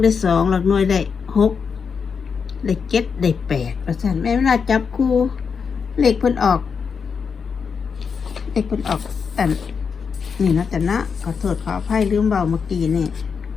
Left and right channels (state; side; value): quieter; right; 6.0 dB